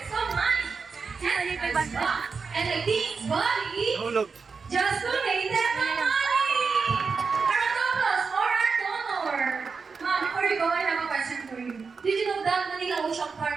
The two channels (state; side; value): quieter; left; 5.0 dB